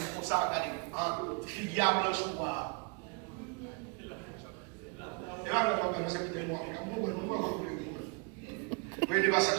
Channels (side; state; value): left; quieter; 33.1 dB